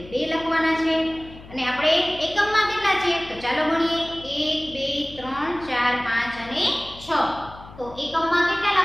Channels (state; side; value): noise; left; hum, 18 dB below the sound